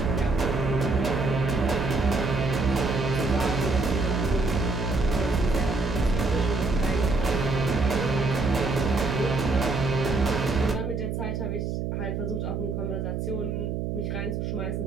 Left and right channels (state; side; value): noise; right; hum, 2 dB below the sound